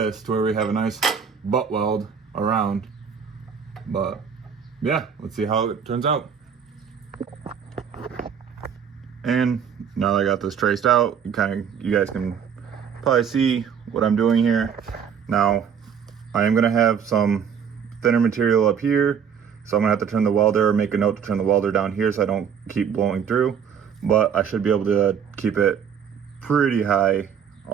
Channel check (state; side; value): quieter; left; 7.4 dB